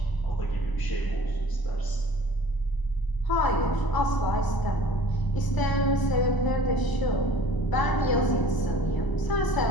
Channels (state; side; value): late; right; 1.0 ms